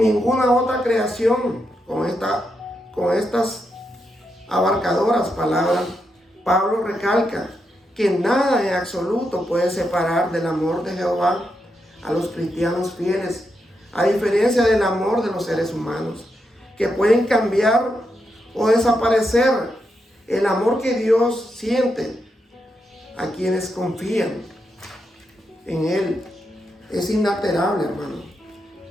otra creación, con estas abarcadoras palabras, Pablo recalca que nada en absoluto puede separar del amor de Jehová a los cristianos fieles, a diferencia del amor de los seres humanos, que pueden cambiar o desaparecer. El amor que Dios siente a quienes confían en Él es inalterable, hermano,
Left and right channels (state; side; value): normal; both; correlation 0.84